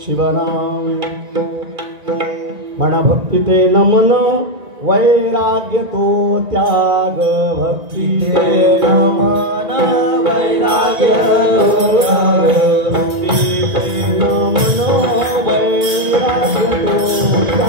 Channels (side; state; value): left; late; 1.9 ms